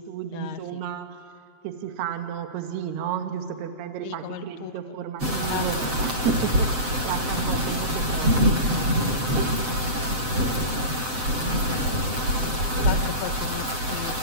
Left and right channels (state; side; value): late; left; 7.8 ms